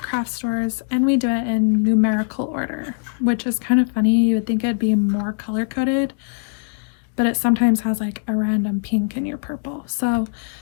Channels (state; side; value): silent; right; digital silence